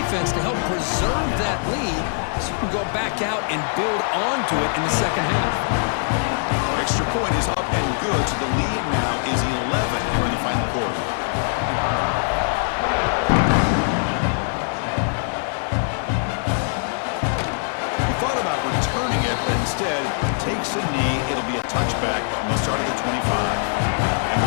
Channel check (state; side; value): silent; right; 64 dB below the other